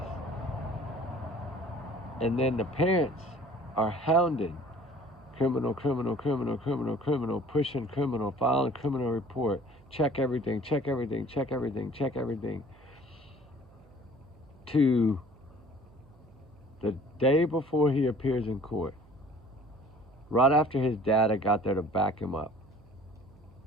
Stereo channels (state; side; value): noise; right; hum, 25 dB below the sound